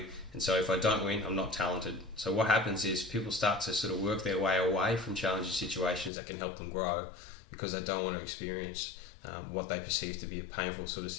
and so if I don't win, I'm not talented." So what happens is people start to sort of work their way away from challenging situations that can help them grow because they don't want to experience what they perceive to be a painful sort of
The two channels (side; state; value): right; drops out; at 6.1 s